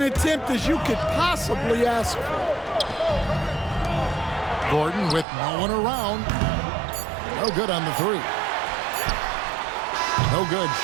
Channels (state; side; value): drops out; left; at 5.2 s